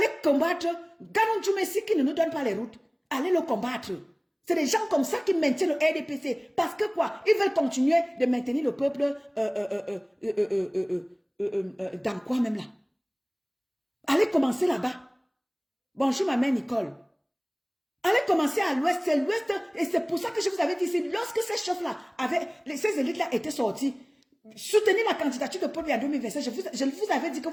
combattre Ganon Djoumessi qui ne nous donne pas les routes. Allez le combattre. C'est des gens comme ça qui maintiennent le RDPC. Parce que quoi? Ils veulent continuer de maintenir le peuple dans quoi même là? Allez commencer là-bas. Bonjour ma mère Nicole. Allez commencer à l'ouest. C'est l'ouest. Et c'est pour ça que je vous avais dit, lorsque ces chefs-là, ces élites-là étaient sortis, soutenir la candidature de Paul Biya en 2025, je vous avais dit que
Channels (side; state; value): both; identical; correlation 1.00